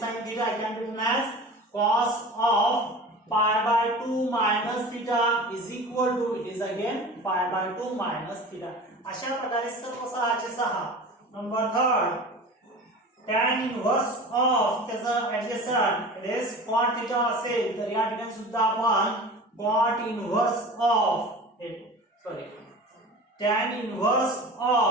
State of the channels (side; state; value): both; normal; correlation 0.36